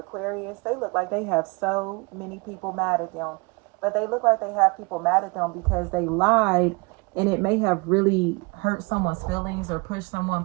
Aquarius, they look like they have so many people mad at them. But they look like they have people mad at them because they lied and it may have really hurt someone's feelings or pushed someone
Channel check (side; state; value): left; quieter; 29.2 dB